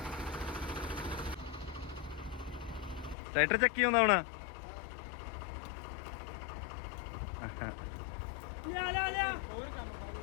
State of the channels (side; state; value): right; drops out; at 3.2 s